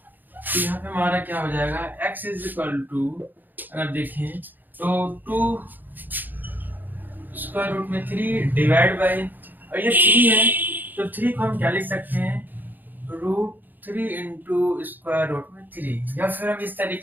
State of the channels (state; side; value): late; left; 0.088 ms